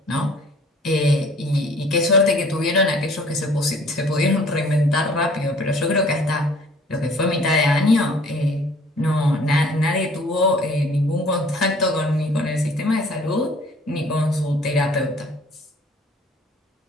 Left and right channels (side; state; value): both; normal; correlation 0.53